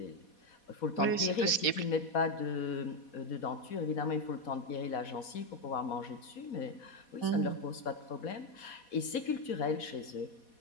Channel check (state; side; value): late; right; 4.2 ms